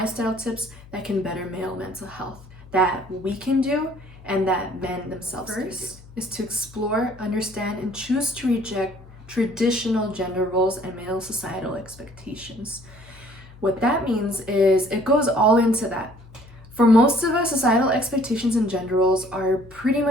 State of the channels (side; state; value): left; noise; hum, 21 dB below the sound